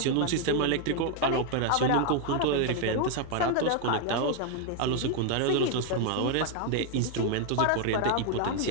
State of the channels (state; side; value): different; both; correlation 0.00